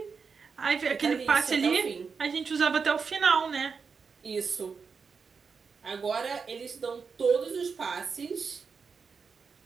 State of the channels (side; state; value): left; quieter; 5.4 dB